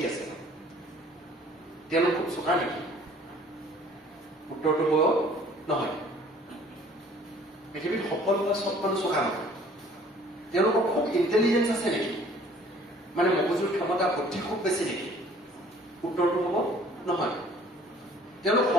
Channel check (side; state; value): both; normal; correlation 0.54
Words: আছে? তেওঁলোক খুব চোকা নেকি? উত্তৰটো হ'ব নহয়। পৃথিৱীত সফল হোৱা চব মানুহ চোকা নহয়। তেওঁলোকৰ খুব ইণ্টেলিজেঞ্চ আছে নেকি? মানে মগজুৰ ক্ষমতা বুদ্ধি খুব বেছি নেকি? উত্তৰটো হ'ব নহয়। তেওঁলোক